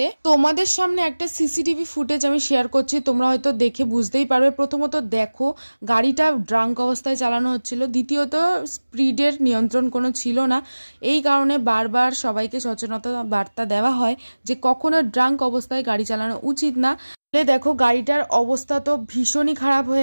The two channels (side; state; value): both; inverted; correlation -1.00